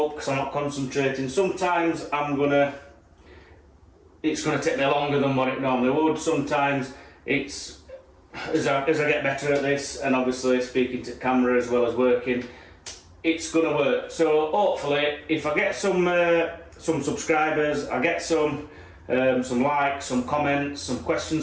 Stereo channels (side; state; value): both; identical; correlation 1.00